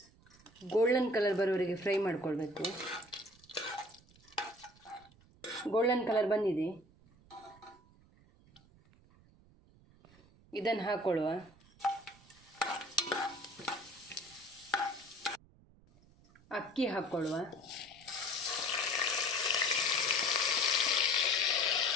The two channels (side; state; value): right; noise; rumble, 27 dB below the sound